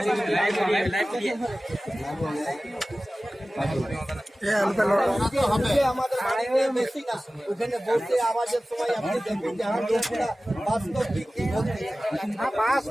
ওখানে বসে আওয়াজের সময় আপনি দেখবেন যে আমার লোকটা বাস্তব কি বলছে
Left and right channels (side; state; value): both; normal; correlation 0.97